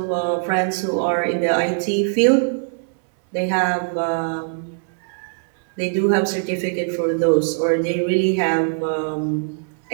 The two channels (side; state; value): left; silent; 65 dB below the other